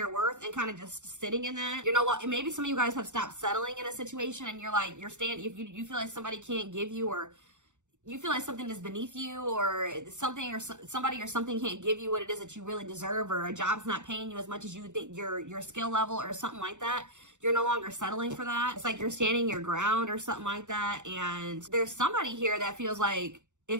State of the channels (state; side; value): late; left; 0.85 ms